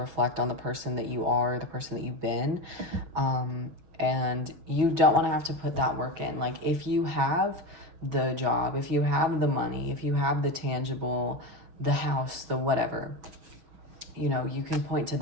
on the person that you are, the person that you've been, and you don't want to have to put that work in. Like, if you have the job, if you have the money, if you have the tangible, the house, the whatever, you can point to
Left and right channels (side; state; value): left; late; 6.3 ms